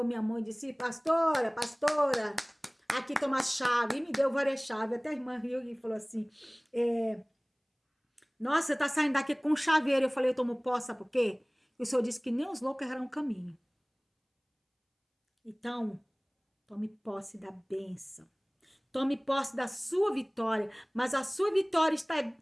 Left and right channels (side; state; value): both; identical; correlation 1.00